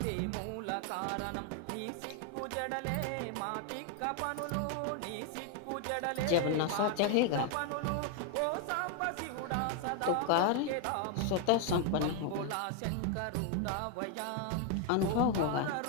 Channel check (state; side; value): different; both; correlation 0.00